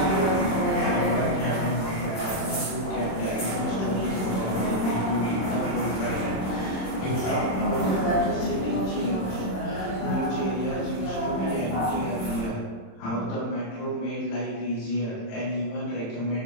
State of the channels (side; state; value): right; late; 26 ms